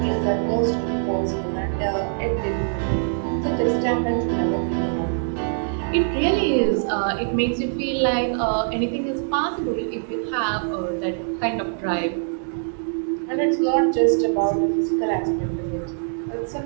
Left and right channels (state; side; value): silent; left; digital silence